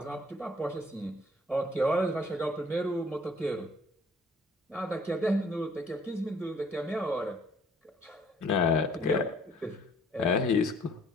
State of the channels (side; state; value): both; normal; correlation 0.58